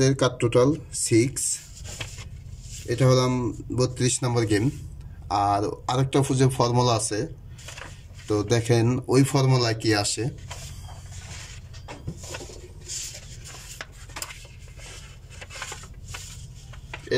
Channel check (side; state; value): both; identical; correlation 1.00